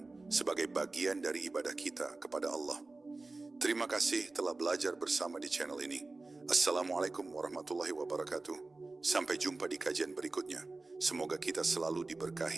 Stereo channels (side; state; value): left; quieter; 3.4 dB